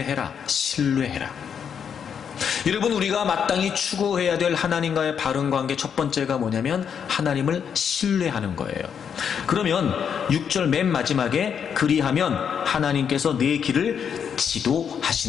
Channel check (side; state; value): right; quieter; 7.5 dB